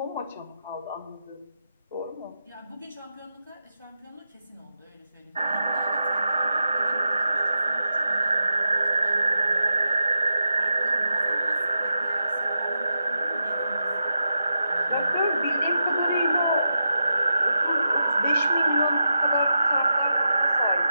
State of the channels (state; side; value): inverted; both; correlation -0.87